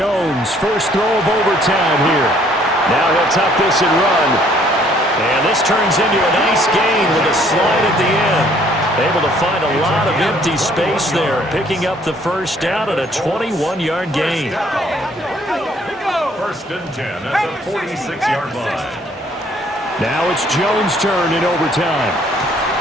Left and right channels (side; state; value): both; normal; correlation 0.62